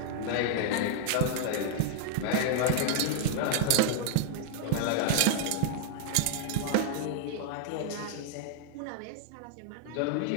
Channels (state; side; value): different; both; correlation -0.01